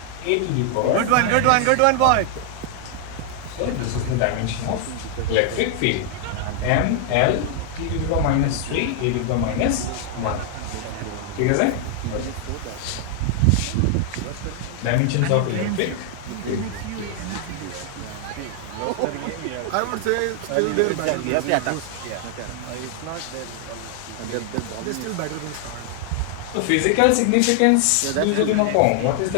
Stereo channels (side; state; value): both; different; correlation 0.00